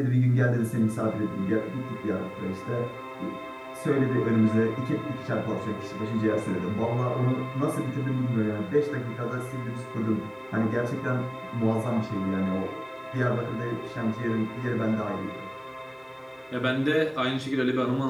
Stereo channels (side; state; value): both; identical; correlation 1.00